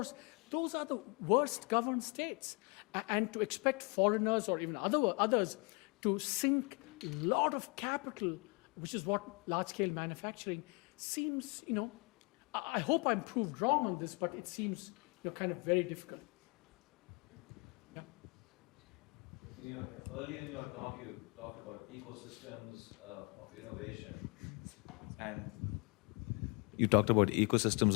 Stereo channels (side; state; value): right; quieter; 32.2 dB